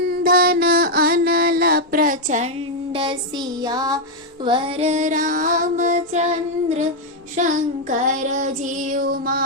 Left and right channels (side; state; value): both; normal; correlation 0.00